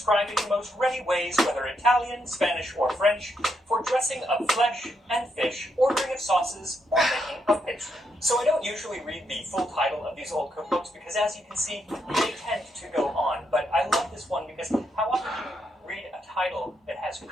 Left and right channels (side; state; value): both; normal; correlation 0.79